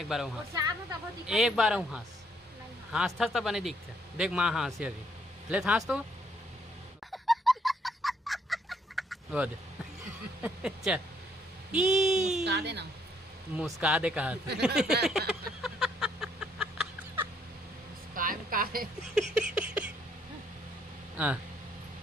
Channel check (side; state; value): both; normal; correlation 0.68